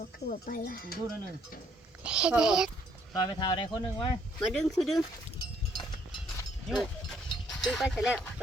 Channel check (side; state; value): both; normal; correlation 0.67